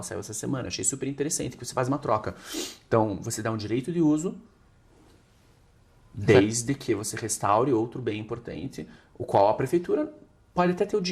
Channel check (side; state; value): both; identical; correlation 1.00